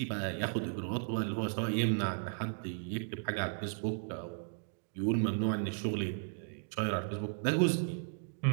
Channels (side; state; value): left; silent; digital silence